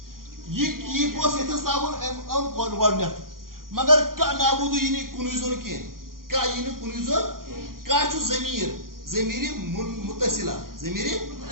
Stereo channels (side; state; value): left; late; 0.91 ms